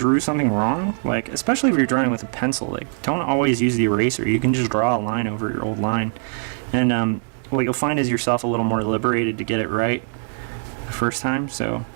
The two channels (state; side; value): silent; left; 64 dB below the other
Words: something wrong, like, especially if you're drawing with a pencil, like, don't always use the eraser. You can just draw a line over your old line, and what you'll find is yourself a little more liberated to get it right the first time. So